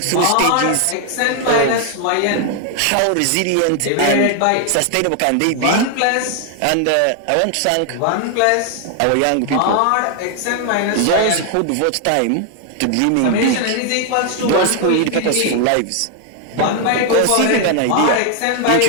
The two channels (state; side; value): different; both; correlation 0.00